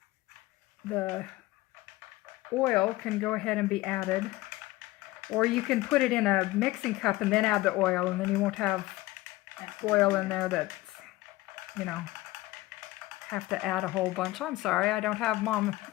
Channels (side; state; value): right; quieter; 18.6 dB